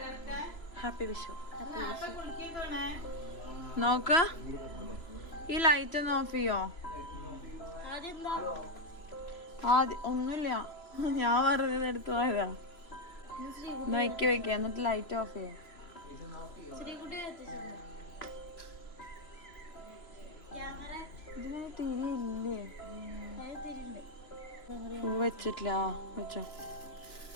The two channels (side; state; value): right; late; 3.0 ms